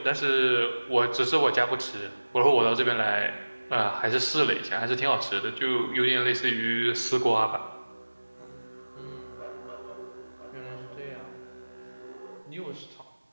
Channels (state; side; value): inverted; both; correlation -1.00